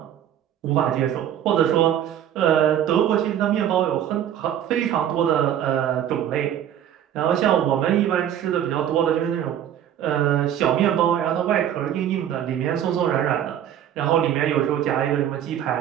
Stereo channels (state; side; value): quieter; left; 10.4 dB